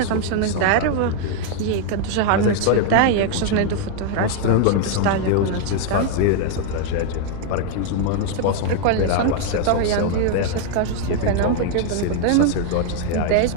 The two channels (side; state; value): both; different; correlation 0.00